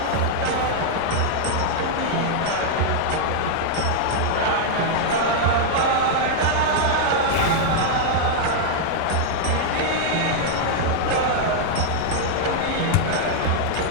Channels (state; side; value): different; both; correlation -0.01